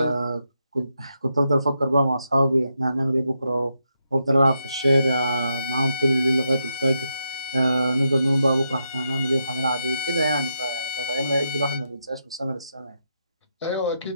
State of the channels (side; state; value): both; inverted; correlation -0.82